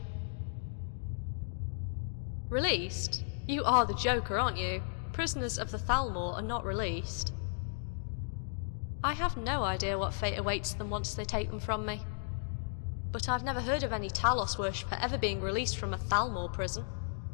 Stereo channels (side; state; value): right; silent; digital silence